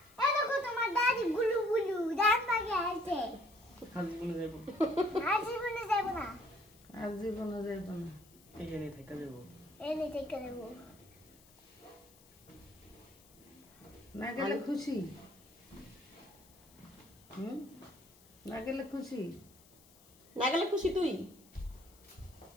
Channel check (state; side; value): noise; left; hiss, 26 dB below the sound